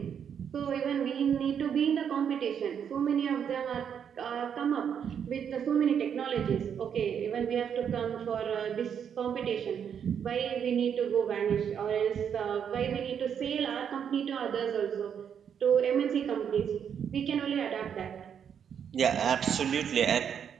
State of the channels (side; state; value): left; quieter; 8.0 dB